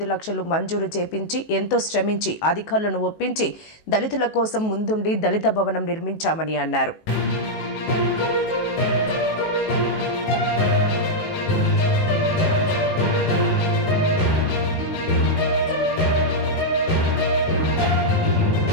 లక్షలు మంజూరు చేపించి ఎంతో శ్రమించి అధికారులను ఒప్పించి దళితుల కోసం ముందుండి దళిత భవనం నిర్మించామని అన్నారు.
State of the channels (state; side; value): late; right; 19 ms